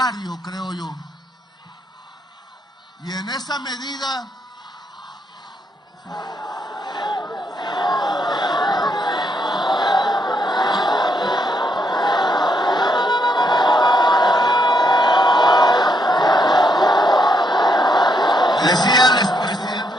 creo yo. Y en esa medida decía el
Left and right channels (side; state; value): both; normal; correlation 0.76